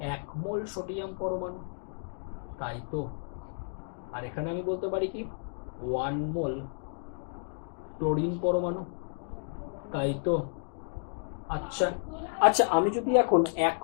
1 মোল সোডিয়াম পরমাণু, তাই তো? আর এখানে আমি বলতে পারি কি 1 মোল ক্লোরিন পরমাণু, তাই তো? আচ্ছা আচ্ছা, আমি যদি এখন 1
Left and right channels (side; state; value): right; silent; digital silence